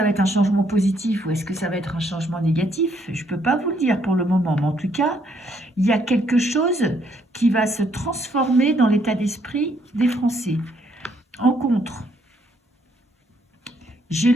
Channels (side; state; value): both; normal; correlation 0.70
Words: va être un changement positif ou est-ce que ça va être un changement négatif? Je ne peux pas vous le dire pour le moment, mais en tout cas, il y a quelque chose qui va se transformer dans l'état d'esprit des Français. En contre, j'ai